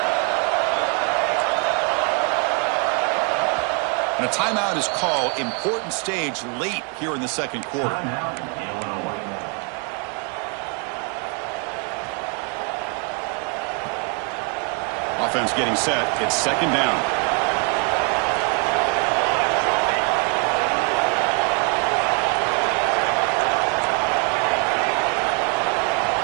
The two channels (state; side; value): quieter; left; 36.6 dB